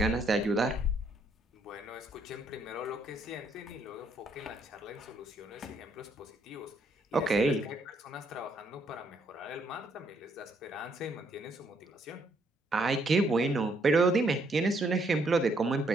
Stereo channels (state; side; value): normal; both; correlation 0.71